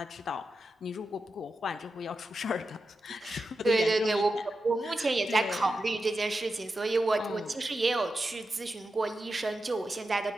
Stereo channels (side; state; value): both; normal; correlation 0.89